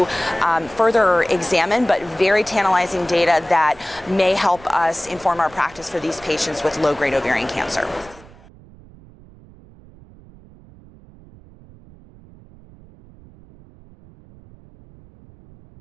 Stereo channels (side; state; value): right; noise; rumble, 23 dB below the sound